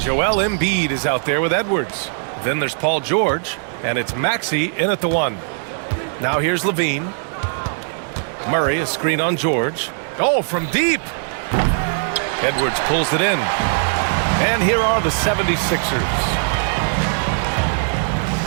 Joel Embiid is out there with Edwards. Then there's Paul George. And it's Maxey in at the 1. Now here's LaVine. Murray, a screen on George. Oh, from deep. Edwards pulls it in. And here are the 76ers.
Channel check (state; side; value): silent; left; digital silence